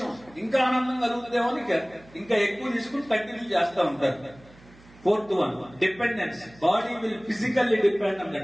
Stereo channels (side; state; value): right; noise; hum, 25 dB below the sound